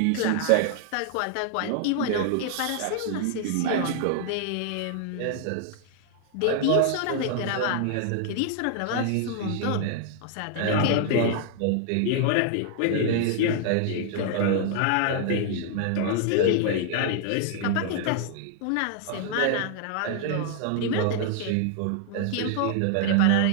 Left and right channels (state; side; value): different; both; correlation 0.00